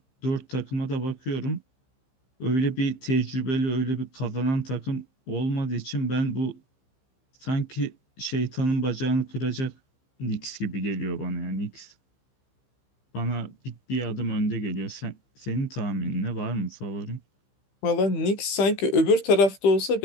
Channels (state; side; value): late; right; 15 ms